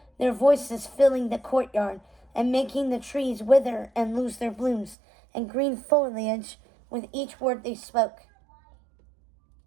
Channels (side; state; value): left; drops out; at 5.0 s